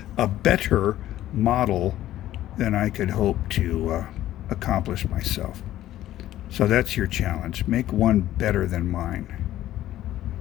model than I could hope to accomplish myself. So that's your challenge. Make one better than mine.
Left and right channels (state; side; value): quieter; right; 13.6 dB